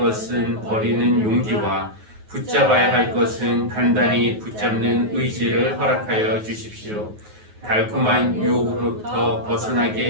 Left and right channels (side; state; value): left; late; 9.4 ms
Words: 버리는 용기와 붙잡아야 할 것은 단단히 붙잡는 의지를 허락하여 주십시오. 달콤한 유혹으로부터